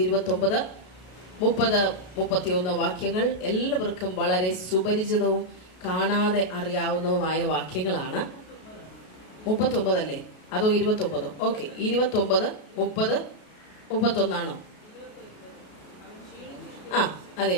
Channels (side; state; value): right; late; 33 ms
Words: 29, 30, 31 വാക്യങ്ങൾ എല്ലാവർക്കും വളരെ സുപരിചിതവും കാണാതെ അറിയാവുന്നതുമായ വാക്യങ്ങളാണ്. 39 അല്ലേ, അതോ 29? ഓക്കെ, 29, 30, 31 ആണോ? അതെ